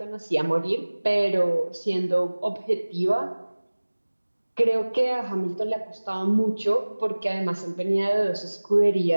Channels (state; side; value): inverted; both; correlation -1.00